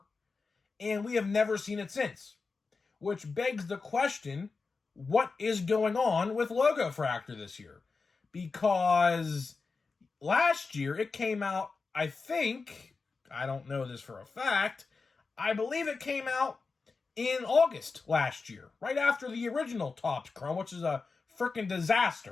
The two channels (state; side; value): quieter; right; 4.4 dB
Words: and we have never seen it since. Which begs the question, what is going on with Logofractor this year? Because last year it came out, I think, I don't know this for a fact, I believe it came out in August last year, right after the original Topps Chrome, which is a freaking